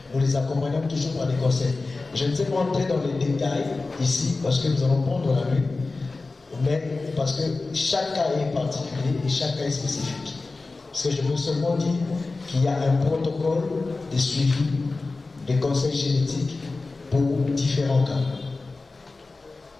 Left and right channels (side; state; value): right; quieter; 3.6 dB